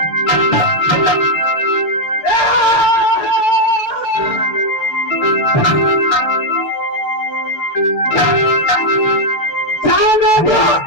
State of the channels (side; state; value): right; late; 6.7 ms